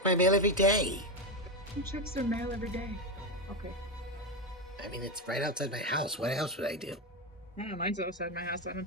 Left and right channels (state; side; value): normal; both; correlation 0.11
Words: my mail every day. Who checks their mail every day? Okay. I mean, it's right outside my house. What else would I do? Oh, mine's outside my house. I don't